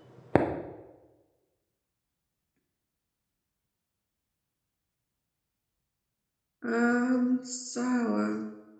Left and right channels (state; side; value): identical; both; correlation 1.00